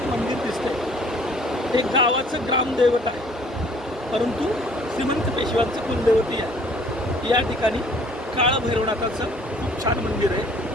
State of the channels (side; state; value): both; normal; correlation 0.57